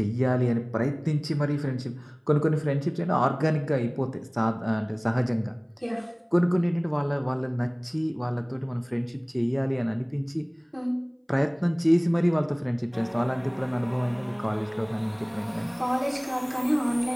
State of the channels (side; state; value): both; identical; correlation 1.00